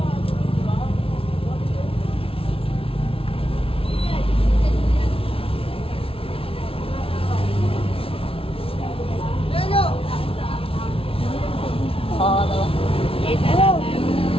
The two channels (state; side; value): late; right; 0.26 ms